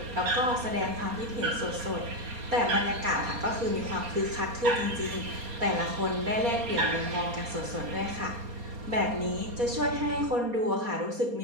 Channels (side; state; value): left; late; 4.2 ms